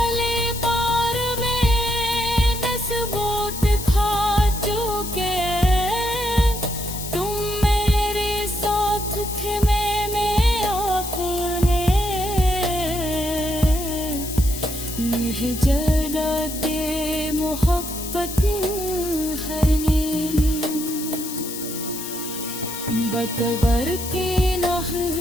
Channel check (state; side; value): noise; left; hiss, 8 dB below the sound